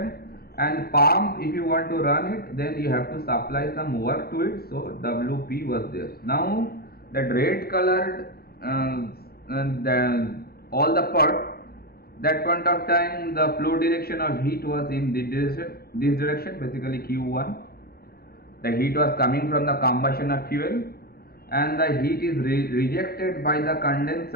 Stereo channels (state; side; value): late; right; 0.45 ms